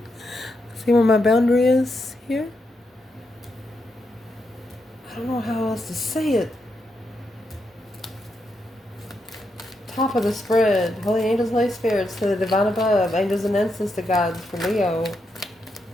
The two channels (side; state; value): both; normal; correlation 0.82